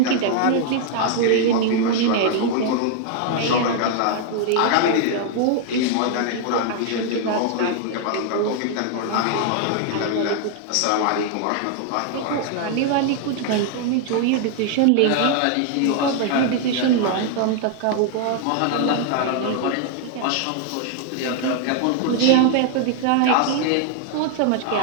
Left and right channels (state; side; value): different; both; correlation 0.00